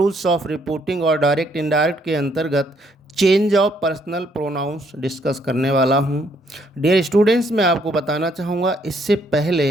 ऑफ रिपोर्टिंग और direct indirect के अंतर्गत change of personal pronouns discuss करने वाला हूं। डियर स्टूडेंट्स, मैं आपको बताना चाहूँगा, इससे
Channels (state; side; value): normal; both; correlation 0.69